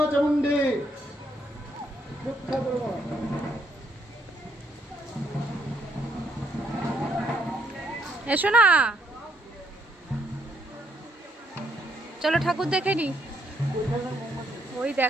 চামুন্ডি। এসো না, চলো ঠাকুর দেখে নি। ওই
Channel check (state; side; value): normal; both; correlation 0.72